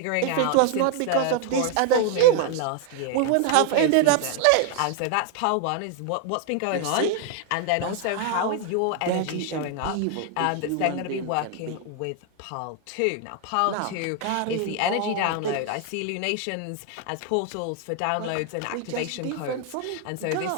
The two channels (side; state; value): both; different; correlation 0.00